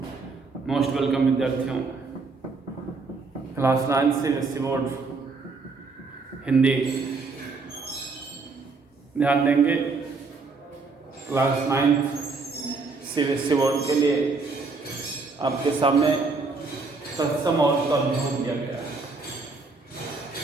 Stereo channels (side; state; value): left; quieter; 4.1 dB